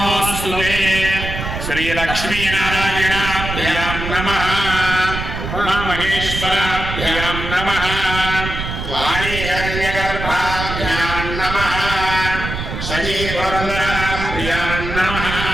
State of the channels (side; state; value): right; noise; rumble, 5 dB below the sound